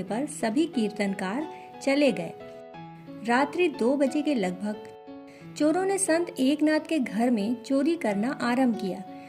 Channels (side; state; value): both; identical; correlation 1.00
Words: पर सभी कीर्तनकार चले गए। रात्रि 2 बजे के लगभग चोरों ने संत एकनाथ के घर में चोरी करना आरंभ किया।